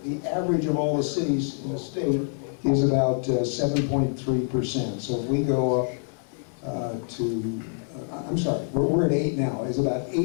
the average of all the cities in the state is about 7.3%. So if we go up to, I'm sorry, we're at 8 now, it's about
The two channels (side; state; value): right; silent; 61 dB below the other